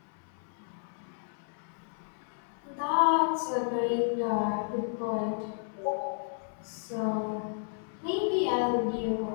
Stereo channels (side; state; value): right; silent; 56 dB below the other